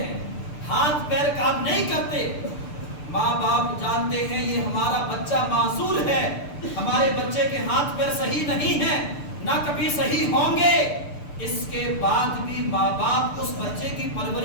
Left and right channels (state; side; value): late; right; 6.8 ms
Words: ہاتھ پیر کام نہیں کرتے، ماں باپ جانتے ہیں یہ ہمارا بچہ معذور ہے، ہمارے بچے کے ہاتھ پیر صحیح نہیں ہیں، نہ کبھی صحیح ہوں گے، اس کے بعد بھی ماں باپ اس بچے کی